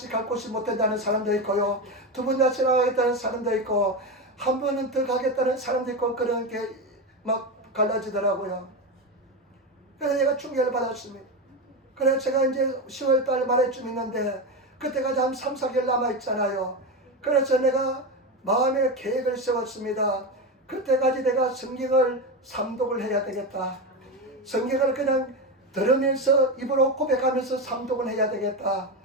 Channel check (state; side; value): normal; both; correlation 0.16